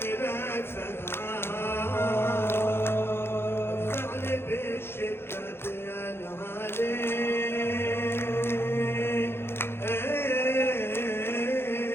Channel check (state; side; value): late; right; 0.11 ms